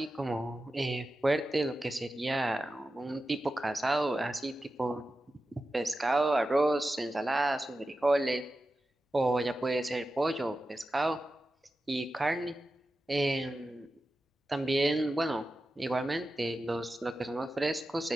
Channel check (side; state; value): both; normal; correlation 0.92